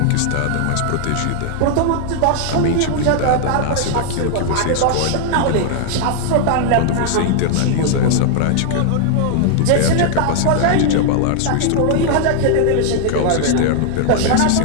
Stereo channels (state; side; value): different; both; correlation 0.00